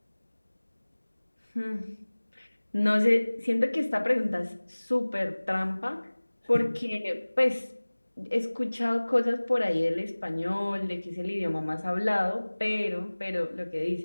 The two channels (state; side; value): inverted; both; correlation -1.00